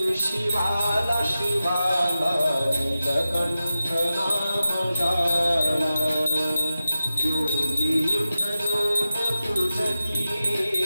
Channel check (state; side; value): inverted; both; correlation -0.93